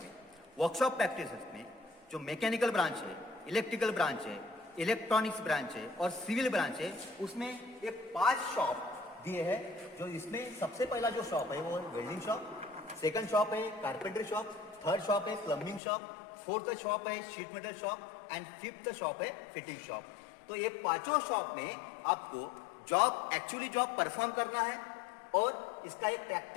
में। वर्कशॉप प्रैक्टिसेस में जो मैकेनिकल ब्रांच है, इलेक्ट्रिकल ब्रांच है, इलेक्ट्रॉनिक्स ब्रांच है और सिविल ब्रांच है, उसमें ये 5 शॉप दिए हैं। जो इसमें सबसे पहला जो शॉप है वो वेल्डिंग शॉप, सेकंड शॉप है कारपेंटरी शॉप, थर्ड शॉप है प्लम्बिंग शॉप, फोर्थ शॉप है sheet metal shop and fifth shop है फिटिंग शॉप। तो ये पांचों शॉप में आपको एक्चुअली जॉब परफॉर्म करना है और इसका एक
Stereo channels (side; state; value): right; drops out; at 15.8 s